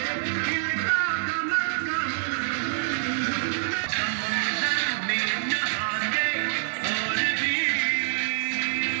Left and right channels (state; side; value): silent; left; digital silence